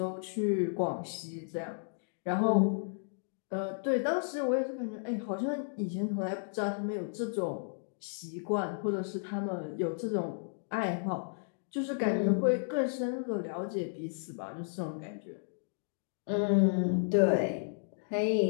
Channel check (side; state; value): right; silent; digital silence